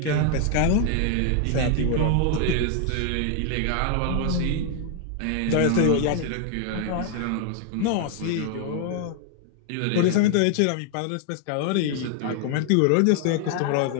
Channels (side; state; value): both; different; correlation 0.00